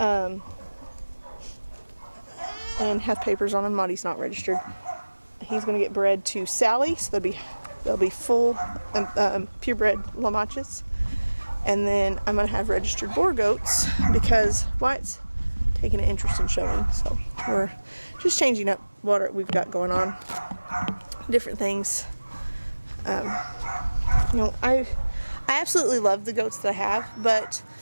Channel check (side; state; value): both; inverted; correlation -1.00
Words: have papers on him. Maudie's not registered. He's going to get bred to Sally, so they'll be full purebred Lamachas. And then I'm going to have registered boar goats because Wyatt's taking an interest in showing. So we're just changing up what we've got going on. Different things. You know, I absolutely love the goats that I have, but